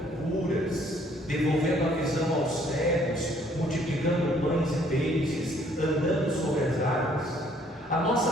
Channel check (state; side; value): normal; both; correlation 0.63